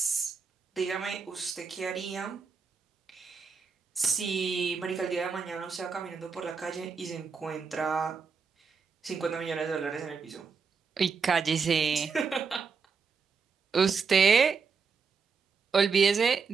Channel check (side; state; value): left; quieter; 5.5 dB